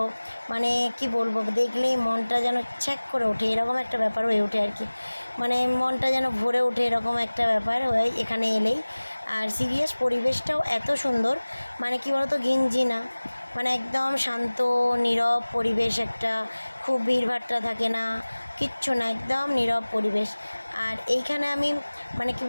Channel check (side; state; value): both; inverted; correlation -1.00